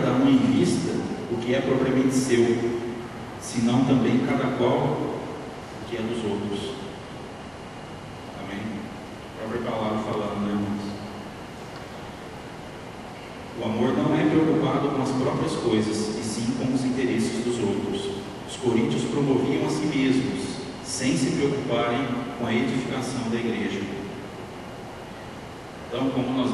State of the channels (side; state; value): both; identical; correlation 1.00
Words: um em vista o que é propriamente seu, senão também cada qual o que é dos outros. Amém? A própria palavra falando, né, irmãos? O amor não é preocupado com as próprias coisas, e sim com os interesses dos outros. Os coríntios promoviam a si mesmos, sem se preocuparem com a edificação da igreja. Então, como nós